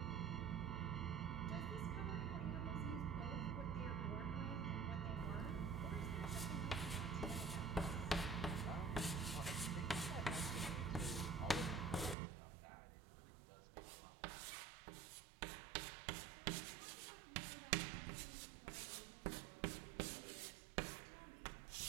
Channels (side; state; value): left; drops out; at 12.2 s